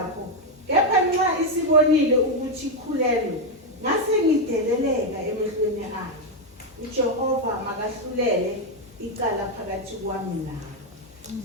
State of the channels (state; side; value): normal; both; correlation 0.03